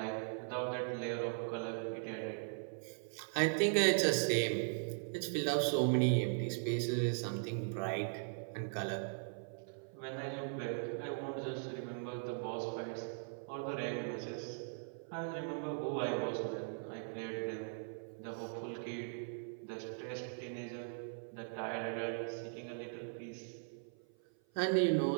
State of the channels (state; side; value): silent; left; 51 dB below the other